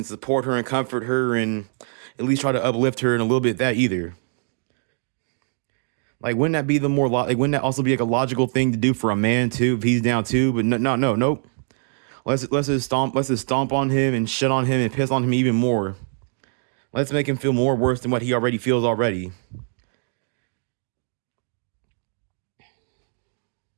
support her and comfort her and at least try to uplift her, and a little bit that either. Like, wouldn't that be the more like wouldn't that also be like a logical thing to do for a man too if he's down too? But no, nope. Let's just stomp on him and shit on him and piss on him even more. Let's make him feel more worse than what he already feels already.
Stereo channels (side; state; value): left; silent; 61 dB below the other